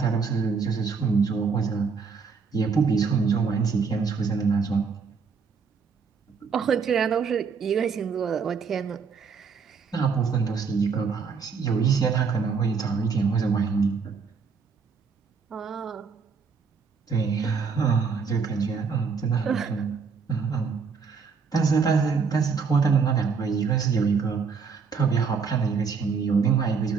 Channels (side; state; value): left; quieter; 5.4 dB